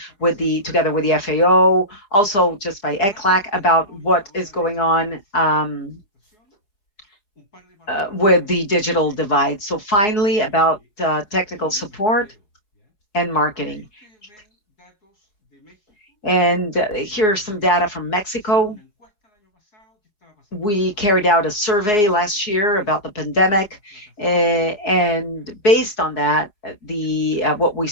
together with the FAO, also just by ECLAC, about what is going on with the digital divide. So finally, about technical support and marketing. And here are some data from Mexico. We carried out a survey last year about the pandemic, and based on that, what we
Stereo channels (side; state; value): right; late; 4.8 ms